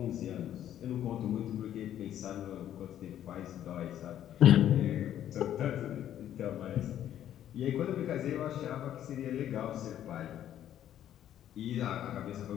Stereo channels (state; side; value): quieter; right; 11.1 dB